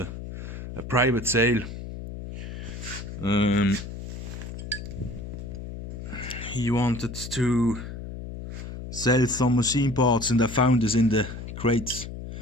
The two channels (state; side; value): noise; left; hum, 9 dB below the sound